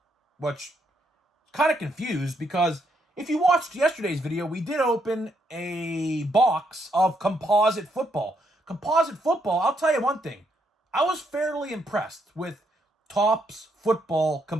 Which, kind of confused, because if you watched yesterday's video, we did open a box of composite football. Composite football, I'll tell you one thing. I was fairly impressed with Topps Football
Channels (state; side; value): normal; both; correlation 0.76